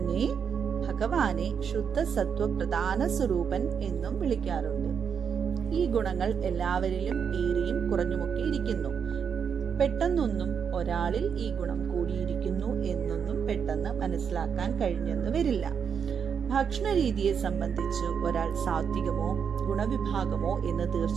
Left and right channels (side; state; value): left; quieter; 7.0 dB